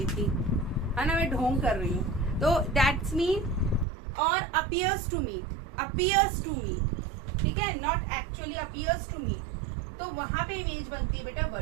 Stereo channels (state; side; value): drops out; left; at 3.9 s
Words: थी, है ना, मैं ढोंग कर रही हूँ, तो दैट्स मीन। और अपीयर्स टू मीट, ठीक है, not actually appears to meet, तो वहां पे इमेज बनती है बेटा